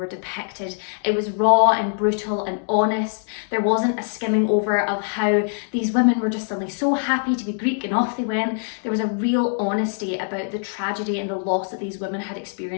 depicted. It was raw and brutal and honest. There wasn't a skimming over of how these women were just suddenly so happy to be Greek and off they went. There was a real honesty about the tragedy and the loss that these women had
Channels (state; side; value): silent; right; digital silence